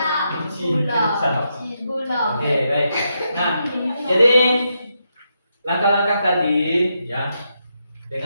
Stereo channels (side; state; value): both; inverted; correlation -0.83